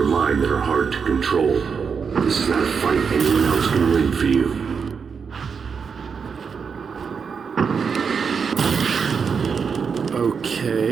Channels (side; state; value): left; quieter; 6.0 dB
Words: mind that are hard to control. This is not a fight anyone else can win for you.